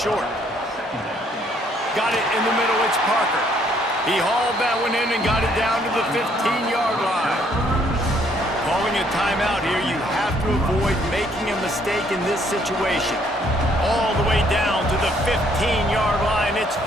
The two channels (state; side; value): normal; both; correlation 0.66